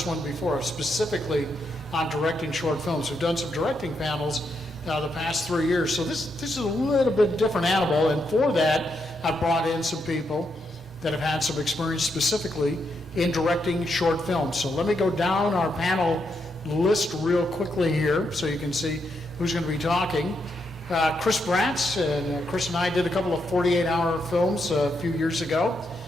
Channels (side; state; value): both; normal; correlation 0.80